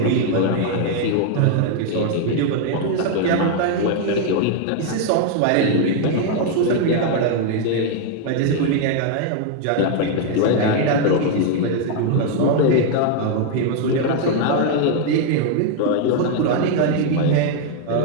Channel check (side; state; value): both; different; correlation 0.00